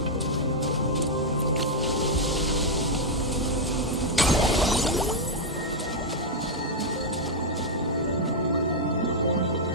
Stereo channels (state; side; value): normal; both; correlation -0.03